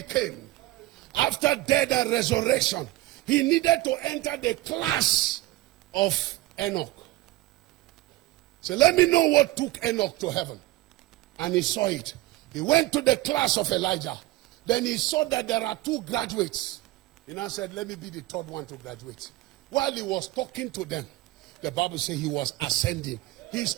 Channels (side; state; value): left; quieter; 17.9 dB